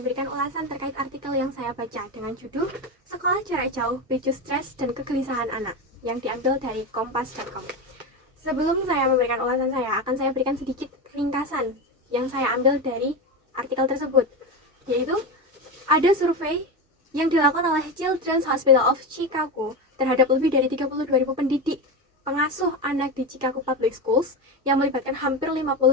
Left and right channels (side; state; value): both; normal; correlation 0.19